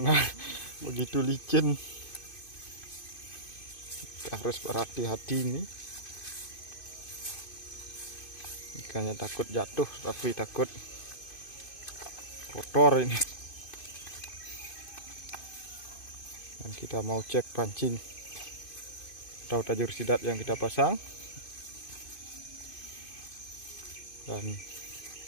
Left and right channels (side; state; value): right; late; 2.5 ms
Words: begitu licin. Kita harus berhati-hati ini. Ikannya takut jatuh, tapi takut kotor ini. Dan kita mau cek pancing atau tajur sidat yang kita pasang. Dan